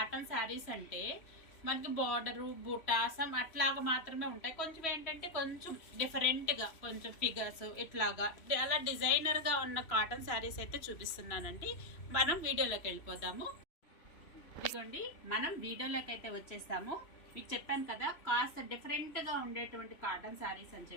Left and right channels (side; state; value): right; late; 3.0 ms